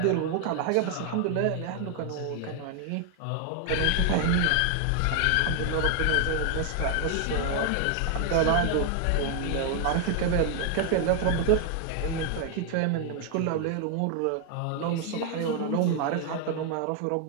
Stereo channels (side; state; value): both; different; correlation 0.00